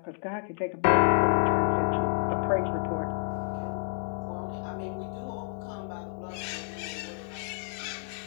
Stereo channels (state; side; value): silent; right; digital silence